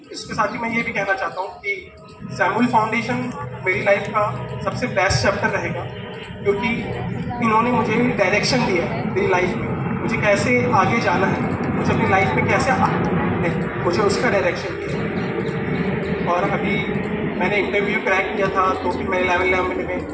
इसके साथ ही मैं ये भी कहना चाहता हूँ कि सैमुअल फाउंडेशन मेरी लाइफ का सबसे बेस्ट चैप्टर रहेगा, क्योंकि इन्होंने मुझे डायरेक्शन दिया मेरी लाइफ में, मुझे कैसे आगे जाना है, मुझे अपनी लाइफ में कैसे मुझे उसका डायरेक्शन दिया। और अभी मैंने इंटरव्यू क्रैक किया था, तो फिर मैंने 11 में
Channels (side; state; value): both; identical; correlation 1.00